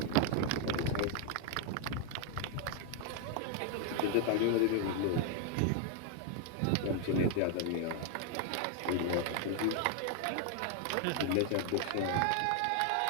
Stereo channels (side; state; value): both; different; correlation 0.00